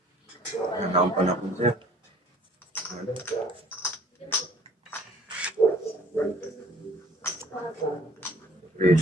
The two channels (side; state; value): both; normal; correlation 0.54